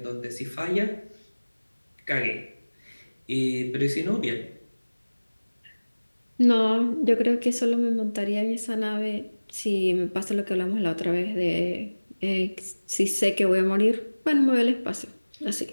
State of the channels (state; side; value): inverted; both; correlation -1.00